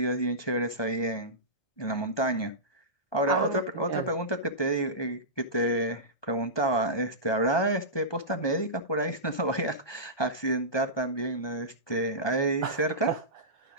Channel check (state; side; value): late; right; 1.2 ms